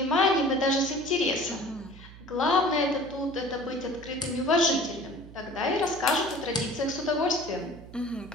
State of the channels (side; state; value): right; noise; hum, 18 dB below the sound